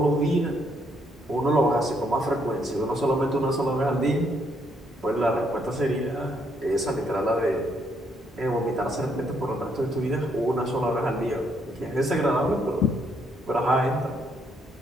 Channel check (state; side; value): normal; both; correlation 0.72